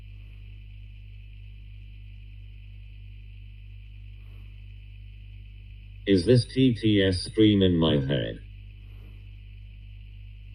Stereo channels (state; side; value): identical; both; correlation 1.00